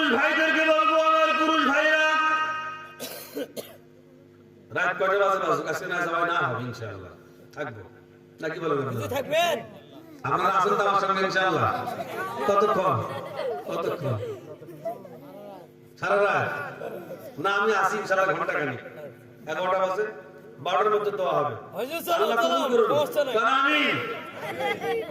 ভাইদেরকে বলবো, আমার পুরুষ ভাইরা, রাত কয়টা বাজে বাজুক, আজকে না যাওয়া না হবে ইনশাআল্লাহ, থাকবো নাকি বলবেন? থাকবেন, আপনারা আছেন তো আমার সঙ্গে ইনশাআল্লাহ। কতক্ষণ? কতক্ষণ? সারা রাত না? আমি আসি ইনশাআল্লাহ ঘন্টা খানিক, 11টা বাজে, 12টার মধ্যে দেওয়া হবে। আল্লাহ কবুল করুন। আমিন।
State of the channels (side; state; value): both; identical; correlation 1.00